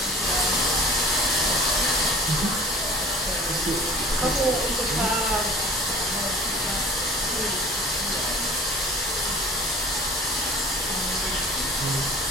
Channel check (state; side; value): normal; both; correlation 0.44